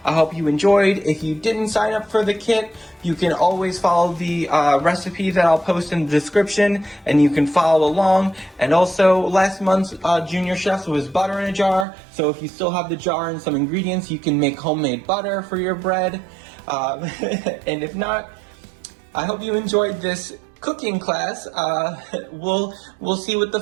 I hope you enjoyed. If you didn't sign up for the kit, you can always follow the recipe that I'll post in the description, and you can follow along. And also, last month's Junior Chefs was butter in a jar, so if you still have the jar and some ingredients, you can make homemade butter for your bread. And if not, I hope you enjoyed this cooking class. We'll see what the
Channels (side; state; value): left; drops out; at 11.9 s